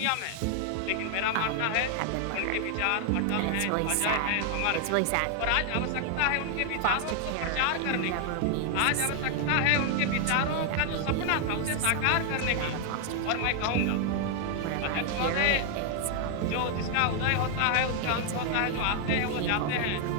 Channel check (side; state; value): both; different; correlation 0.00